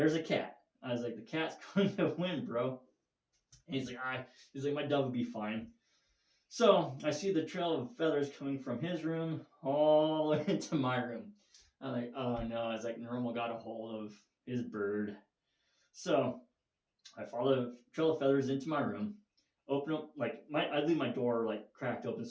a cat. I was like, the cat's going to win, bro. And he's like, my dove will be fine. So I see the trail of feathers coming from his room all the way into my room. I'm like, oh no. I was like, Normal got a hold of his bird. So I follow the trail of feathers into my room, open up, like, I leave my door like cracked open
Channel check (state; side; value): identical; both; correlation 1.00